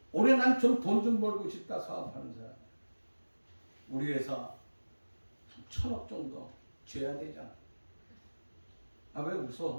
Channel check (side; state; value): both; inverted; correlation -1.00